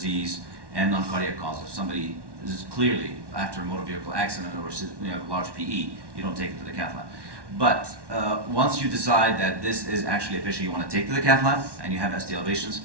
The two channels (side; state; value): left; late; 1.1 ms